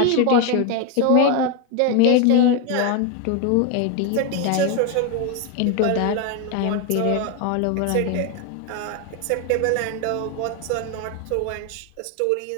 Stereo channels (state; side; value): different; both; correlation 0.01